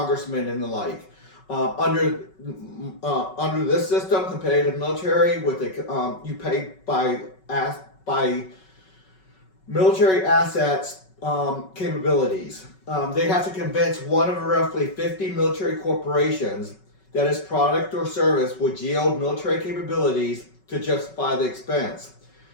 and the like. Under this system, competitive military, with you pay by military assets capabilities. They have to convince one of roughly 50 military corporations that its product or service would yield military capabilities to justify the expense.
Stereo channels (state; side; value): late; right; 5.3 ms